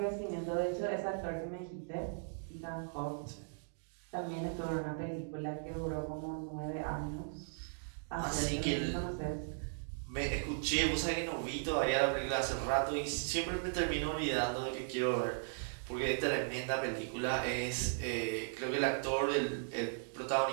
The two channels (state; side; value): silent; left; digital silence